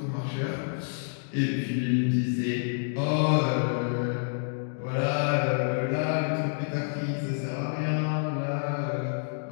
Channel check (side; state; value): right; silent; digital silence